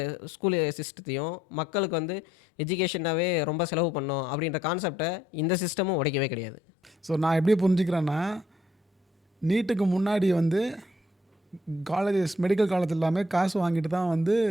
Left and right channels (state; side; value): normal; both; correlation 0.69